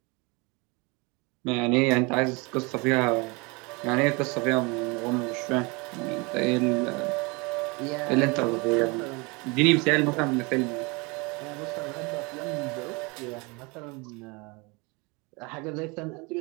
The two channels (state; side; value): quieter; left; 28.0 dB